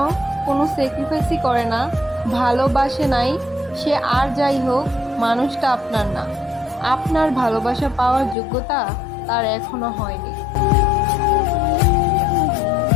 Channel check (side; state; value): right; drops out; at 8.3 s